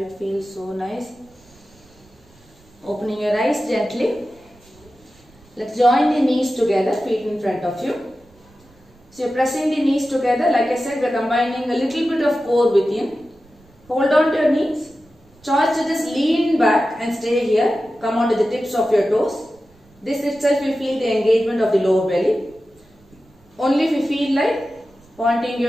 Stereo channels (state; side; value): noise; right; rumble, 29 dB below the sound